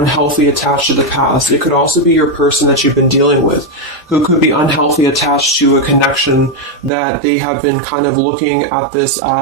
attached to the past. It could also be your person that you've been dealing with, who could be unhealthy attached to a connection that they have been kind of looking at this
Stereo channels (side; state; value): left; drops out; at 6.9 s